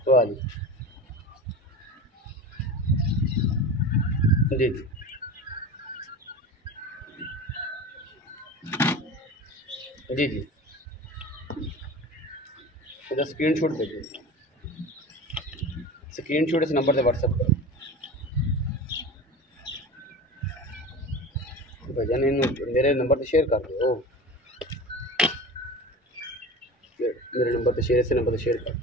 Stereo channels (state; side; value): normal; both; correlation 0.32